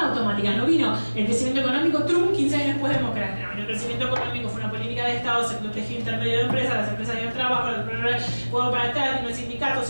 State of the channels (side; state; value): both; inverted; correlation -1.00